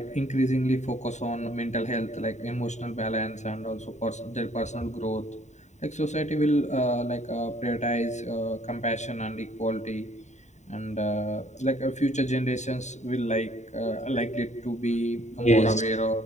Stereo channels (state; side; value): late; right; 0.34 ms